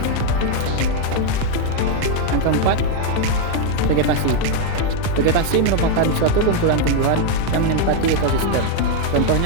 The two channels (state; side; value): different; both; correlation 0.01